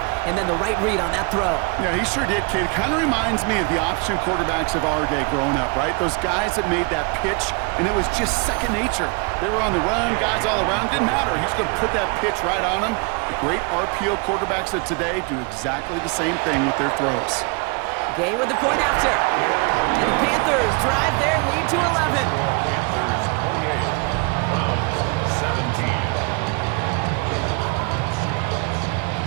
and then the right read on that throw. Yeah, he sure did, kid. It kind of reminds me of the option quarterbacks of our day growing up, right? Those guys that made that pitch, and it was just second nature. They were on the run, guys all around. Didn't matter. He's going to put that pitch right on them. The great RPO quarterbacks of today do exactly the same thing with their throws. Gay with the point after. And the Panthers drive their lead to 11. Panthers 28, Browns 17.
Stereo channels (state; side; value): quieter; left; 31.7 dB